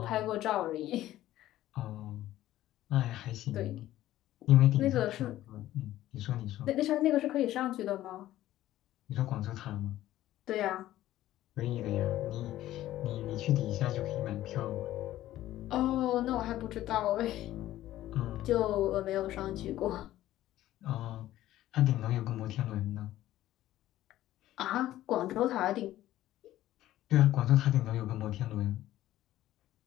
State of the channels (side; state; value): right; quieter; 14.3 dB